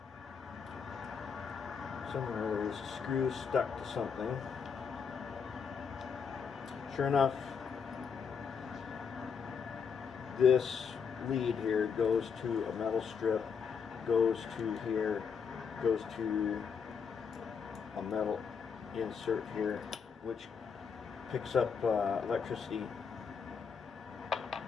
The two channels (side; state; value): right; quieter; 6.3 dB